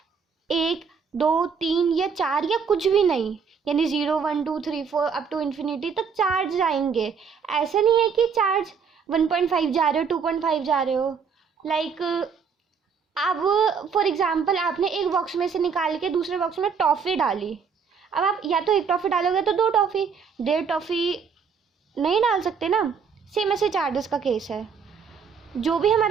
1 2 3 या 4 या कुछ भी नहीं, यानी 0 1 2 3 4 अप टू इन्फिनिटी तक चार्ज जाएंगे। ऐसा नहीं है कि चार्ज 1.5 जा रहे हो 2.5 जा रहे हो, लाइक अब फॉर एग्जांपल आपने एक बॉक्स में से निकाल के दूसरे बॉक्स में टॉफ़ी डाली। अब आप या तो एक टॉफ़ी डालोगे तो 2 टॉफ़ी, 1.5 टॉफ़ी नहीं डाल सकते ना। सेम ऐसे चार्जेस का केस है। जो भी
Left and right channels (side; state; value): left; quieter; 6.2 dB